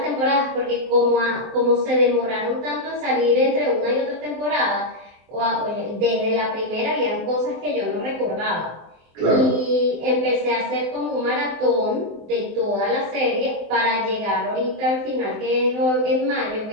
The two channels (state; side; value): late; left; 24 ms